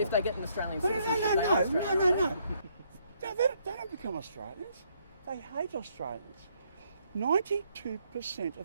they get an Australian No, citizenship, they are Australian. no. They don't become Australians. They hate Australians. 92%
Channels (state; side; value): inverted; both; correlation -0.71